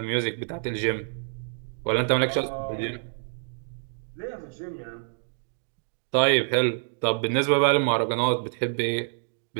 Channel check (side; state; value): left; silent; 60 dB below the other